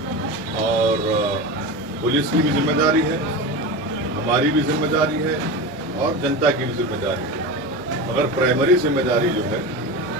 और पुलिस की भी जिम्मेदारी है, हमारी भी जिम्मेदारी है और जनता की भी जिम्मेदारी है। मगर प्राइमरी जिम्मेदारी जो है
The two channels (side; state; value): both; normal; correlation 0.25